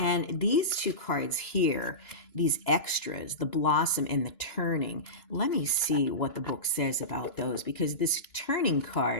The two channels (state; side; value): late; right; 2.9 ms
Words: these 2 cards here, these extras, the Blossom and the Turning, let me see what the book says about those, because this Turning